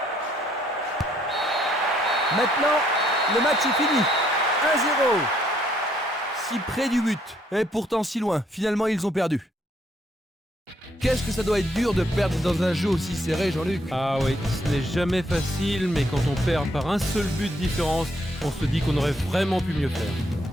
Maintenant, le match est fini. 1-0. Si près du but, et pourtant si loin. Finalement, ils ont perdu. Qu'est-ce que ça doit être dur de perdre dans un jeu aussi serré, Jean-Luc? Ah oui, ce n'est jamais facile, mais quand on perd par un seul but de différence, on se dit qu'on aurait vraiment pu mieux faire.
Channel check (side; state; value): both; normal; correlation 0.70